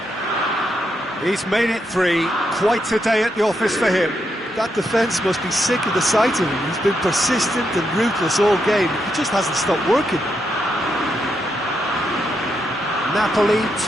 He's made it 3. Quite a day at the office for him. That defence must be sick of the sight of him. He's been persistent and ruthless all game. He just hasn't stopped working. Napoli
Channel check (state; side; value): normal; both; correlation 0.81